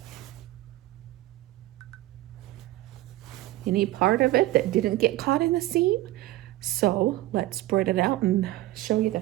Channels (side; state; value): left; quieter; 16.6 dB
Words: part of it that didn't get caught in the seam. So let's spread it out and show you the